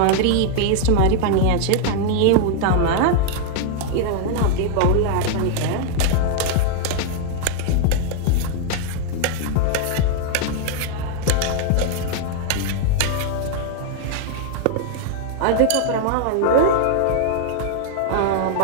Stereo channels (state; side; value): different; both; correlation 0.00